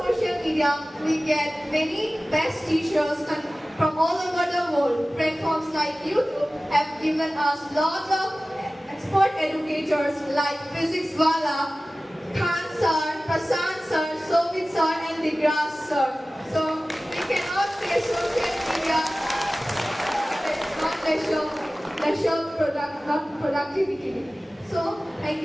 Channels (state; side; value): normal; both; correlation 0.97